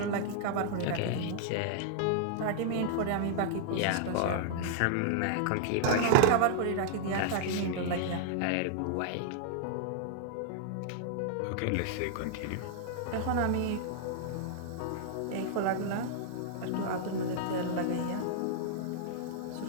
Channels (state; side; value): different; both; correlation -0.01